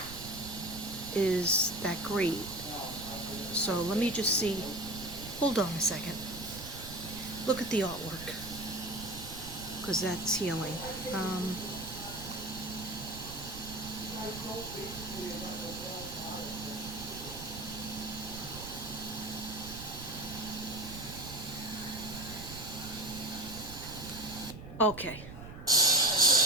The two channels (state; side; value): noise; right; rumble, 12 dB below the sound